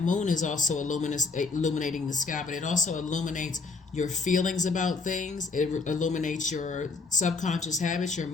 moon is also illuminating the sky, but it also illuminates your feelings about things. It illuminates your subconscious habits, your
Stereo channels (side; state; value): right; quieter; 4.2 dB